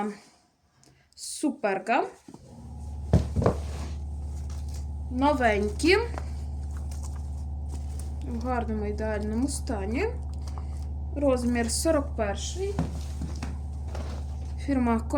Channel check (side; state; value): both; identical; correlation 1.00